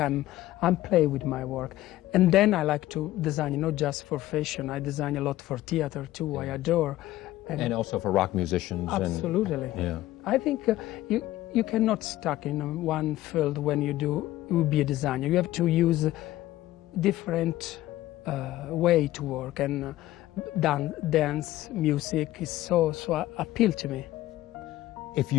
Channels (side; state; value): right; quieter; 15.5 dB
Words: play with my work. And then I like to design, not just for fashion. I design a lot for theater too. Yeah. I adore. And also for rock musicians. Absolutely. Yeah. I think you cannot stuck in one field when you be a designer. You have to use different way to work, and dance, music is so appeal to me. If